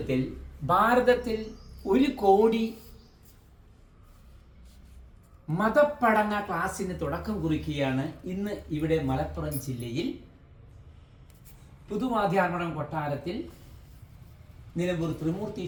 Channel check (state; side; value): identical; both; correlation 1.00